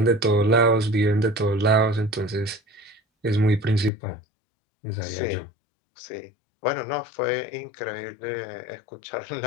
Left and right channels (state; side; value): drops out; right; at 3.9 s